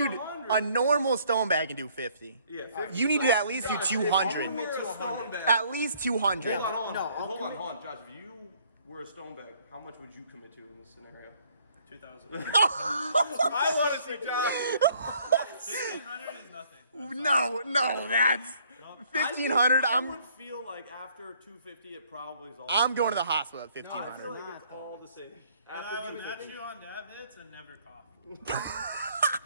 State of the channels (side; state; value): both; inverted; correlation -0.63